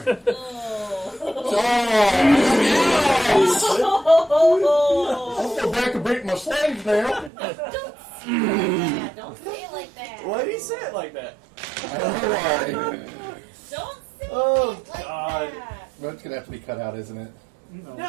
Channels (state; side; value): drops out; left; at 7.3 s